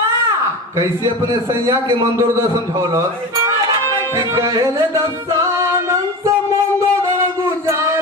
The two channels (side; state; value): both; normal; correlation 0.29